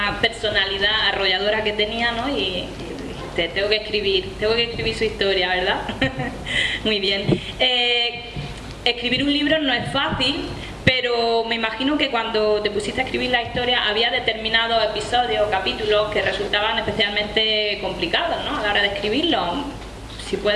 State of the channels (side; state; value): both; identical; correlation 1.00